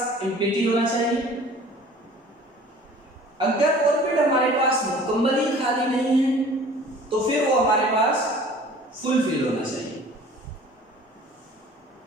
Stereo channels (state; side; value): normal; both; correlation 0.48